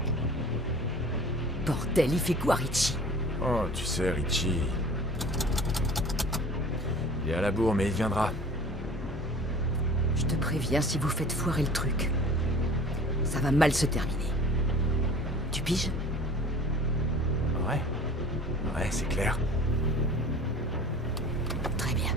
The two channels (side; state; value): both; normal; correlation 0.44